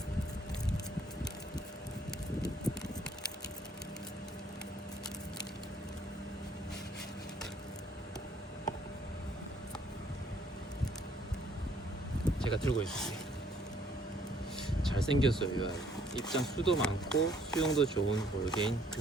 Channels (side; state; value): both; normal; correlation 0.63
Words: 제가 들고 있을게요. 잘생겼어요, 이 아이. 입장 수도 많고 수영도 좋은 볼게인